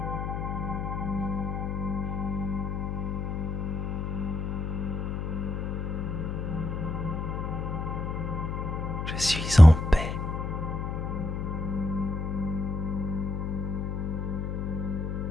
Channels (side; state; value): left; noise; hum, 3 dB below the sound